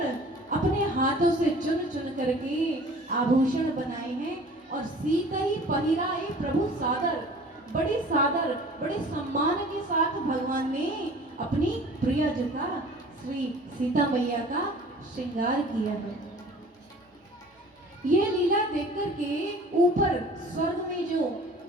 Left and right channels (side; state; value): both; normal; correlation 0.47